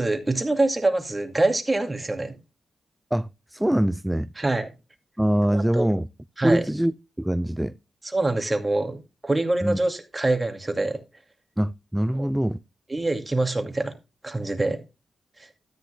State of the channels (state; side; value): normal; both; correlation 0.98